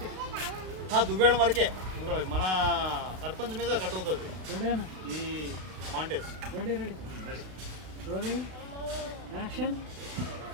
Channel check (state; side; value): late; left; 32 ms